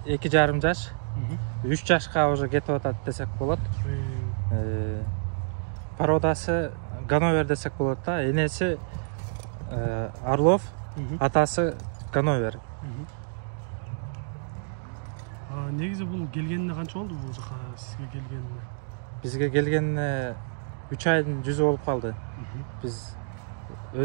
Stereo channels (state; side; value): silent; left; digital silence